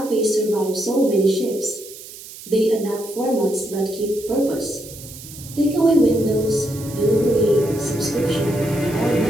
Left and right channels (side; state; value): right; noise; hiss, 15 dB below the sound